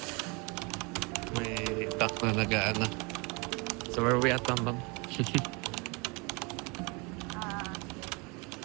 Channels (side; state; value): left; quieter; 29.2 dB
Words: May duck na nagaan na. So where we at, Bang? The